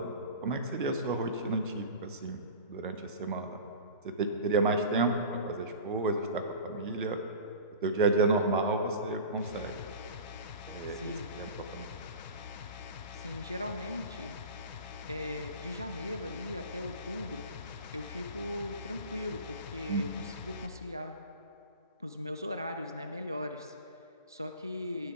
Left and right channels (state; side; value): inverted; both; correlation -0.35